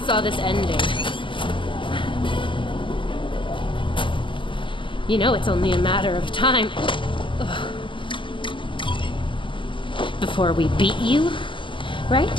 this ending. You know it's only a matter of time before we beat you,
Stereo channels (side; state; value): right; late; 0.24 ms